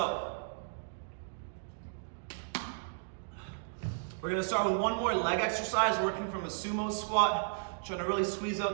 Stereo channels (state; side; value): silent; left; digital silence